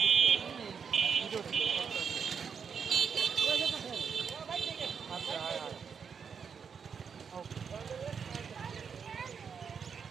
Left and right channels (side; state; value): left; quieter; 6.5 dB